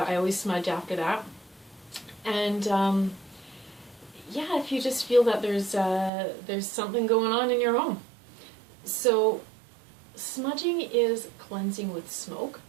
smudge after that. And if you just feel that there's something going on in your home. So smudging is cleansing with smoke.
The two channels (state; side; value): drops out; left; at 6.1 s